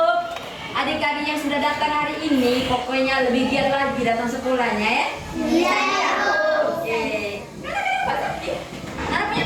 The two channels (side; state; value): both; identical; correlation 1.00